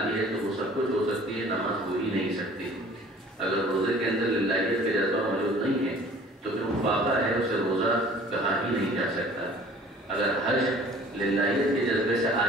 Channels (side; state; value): both; normal; correlation 0.49